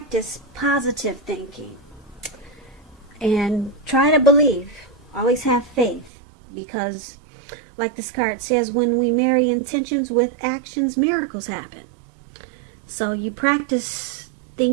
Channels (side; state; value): left; drops out; at 6.1 s